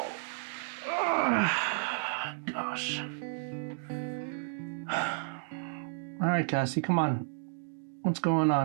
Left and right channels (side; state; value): left; silent; digital silence